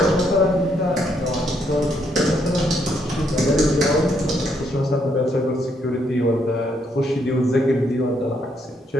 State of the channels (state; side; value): normal; both; correlation 0.74